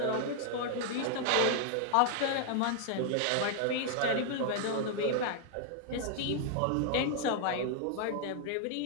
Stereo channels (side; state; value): both; different; correlation 0.00